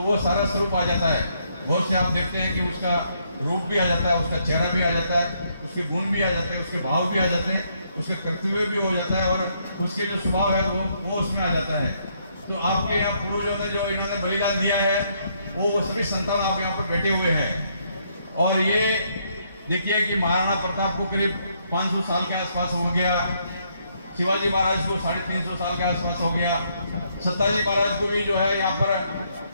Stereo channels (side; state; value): both; inverted; correlation -0.72